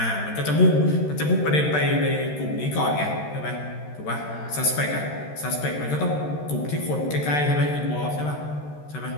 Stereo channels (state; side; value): late; right; 13 ms